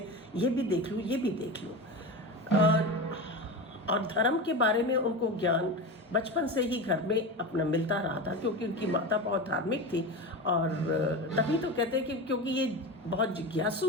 ये भी देख लूँ, ये भी देख लूँ। और धर्म के बारे में उनको ज्ञान बचपन से ही घर में अपना मिलता रहा था, क्योंकि उनकी माता बहुत धार्मिक थी। और तभी तो कहते हैं कि क्योंकि ये बहुत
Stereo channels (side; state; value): both; normal; correlation 0.24